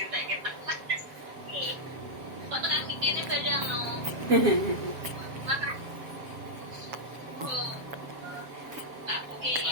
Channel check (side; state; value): left; late; 6.8 ms